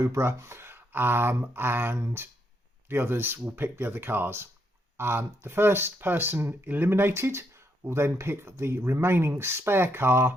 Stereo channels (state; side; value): normal; both; correlation 0.77